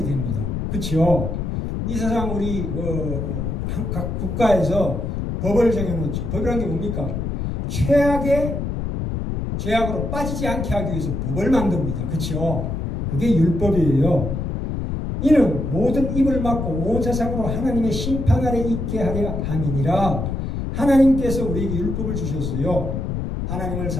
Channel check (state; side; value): noise; left; rumble, 3 dB below the sound